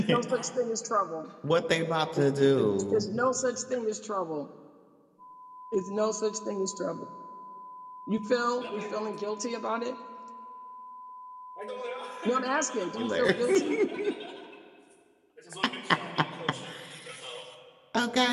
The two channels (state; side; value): identical; both; correlation 1.00